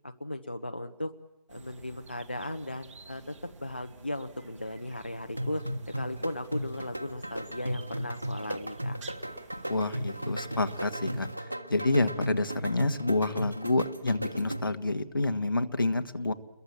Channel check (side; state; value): both; inverted; correlation -0.84